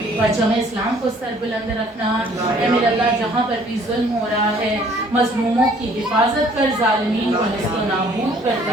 پرچم اسلام کو سر بلند رکھنا۔ اے میرے اللہ جہاں پر بھی ظلم ہو رہا ہے مظلوموں کی حفاظت کر، ظالمین کو نست و نابود کر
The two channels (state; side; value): normal; both; correlation 0.58